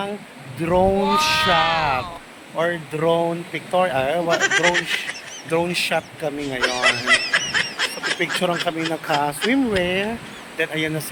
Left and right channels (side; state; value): both; identical; correlation 1.00